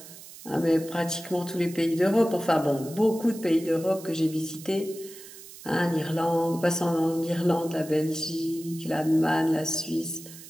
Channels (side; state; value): right; noise; hiss, 17 dB below the sound